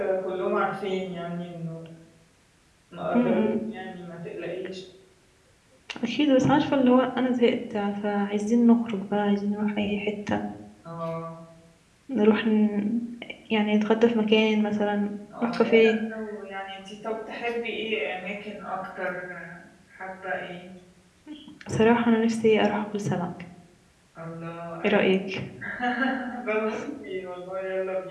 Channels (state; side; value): identical; both; correlation 1.00